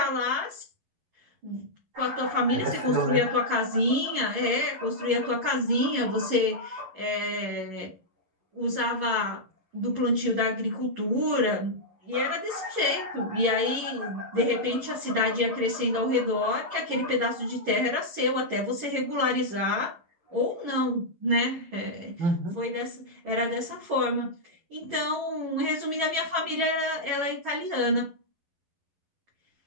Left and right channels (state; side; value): late; left; 11 ms